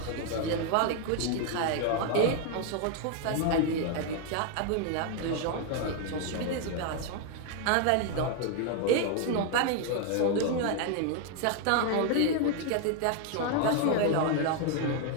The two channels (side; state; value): both; different; correlation 0.00